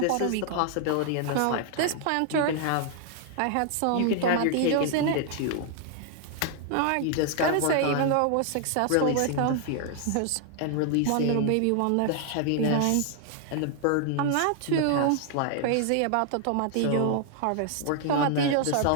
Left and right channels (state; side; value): different; both; correlation 0.00